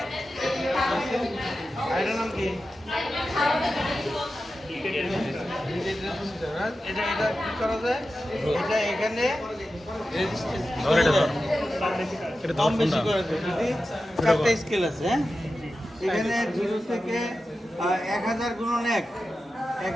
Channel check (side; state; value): both; normal; correlation 0.92